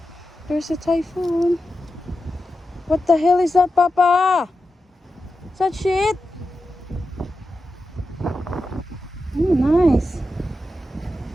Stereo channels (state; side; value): normal; both; correlation 0.90